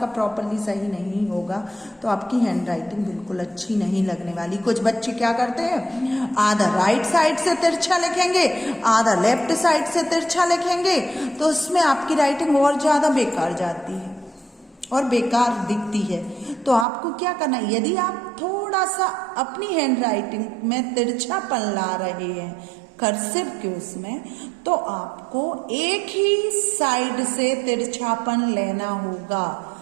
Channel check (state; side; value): drops out; left; at 16.9 s